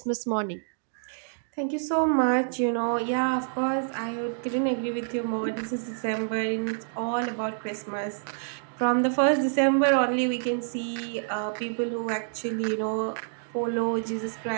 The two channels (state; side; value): silent; left; digital silence